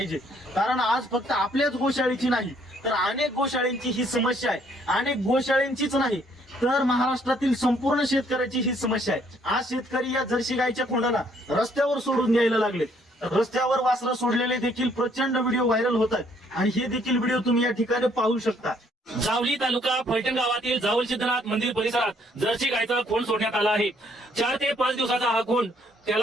कारण आज फक्त आपल्याच गोशाळेची नाही तर अनेक गोशाळेंची ही समस्या आहे। अनेक गोशाळेंचीच नाही तर महाराष्ट्रातील संपूर्ण शेतकऱ्याची ही समस्या आहे। आज शेतकरी या जर्सी गायच्या खोंडाला रस्त्यावर सोडून द्यायला लागले। रस्त्यावर वासरं सोडलेले देखील प्रचंड व्हिडिओ व्हायरल होतात आणि हे देखील व्हिडिओ तुम्ही या ठिकाणी पाहू शकता। जावली तालुका फलटण गावातील जावल सिद्धनाथ मंदिर परिसरात जर्सी गायचा खोंड सोडण्यात आला आहे। 4 ते 5 दिवसाचा हा खोंड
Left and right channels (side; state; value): both; normal; correlation 0.66